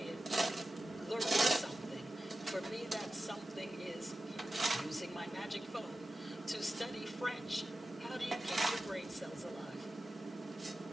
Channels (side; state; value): both; normal; correlation 0.93